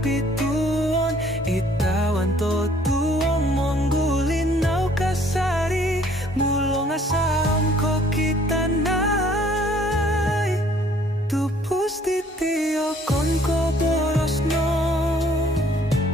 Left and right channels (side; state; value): both; normal; correlation 0.59